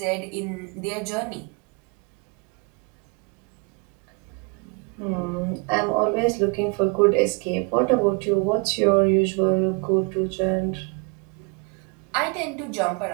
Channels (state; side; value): quieter; left; 31.6 dB